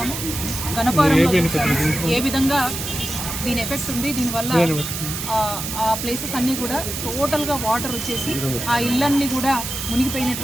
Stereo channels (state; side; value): noise; right; hiss, 5 dB below the sound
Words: గణపారంలో ఏ విధంగా దీని ఎఫెక్ట్ ఉంది. దీనివల్ల ఆ ప్లేసెస్ అన్నీ కూడా టోటల్గా వాటర్ వచ్చేసి ఆ ఇళ్ళన్నీ కూడా